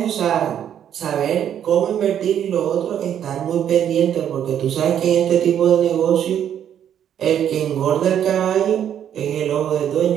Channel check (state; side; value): quieter; left; 9.6 dB